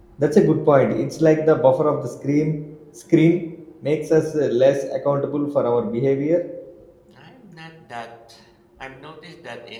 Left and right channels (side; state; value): both; identical; correlation 1.00